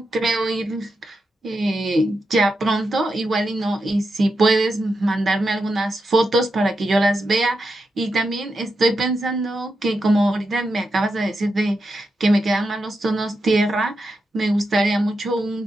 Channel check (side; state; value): both; normal; correlation 0.87